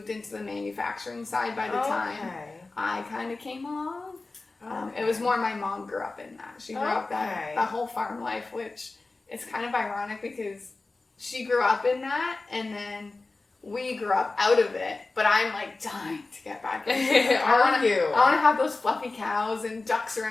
into the manufacturing side by the time I kind of came along. It was more my mom grew up in that. She grew up that whole farm life, which is kind of ironic because she grew up in that and then we grew up out of it. But I'm like dying to get back into it. I want to have those fluffy cows and ducks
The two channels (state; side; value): quieter; right; 3.5 dB